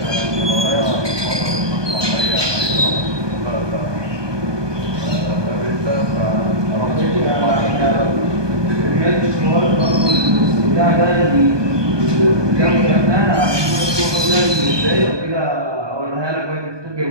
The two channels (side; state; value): left; late; 1.2 ms